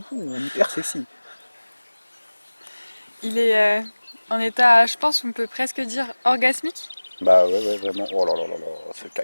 Hyper sexy. Il est en état, je pense, on peut presque dire orgasmique. Bah ouais, vraiment. Oh là là là là, ce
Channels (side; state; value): both; inverted; correlation -1.00